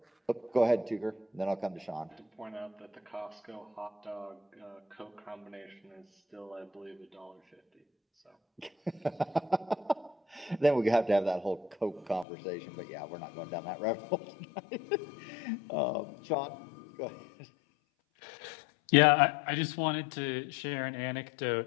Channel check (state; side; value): drops out; right; at 12.2 s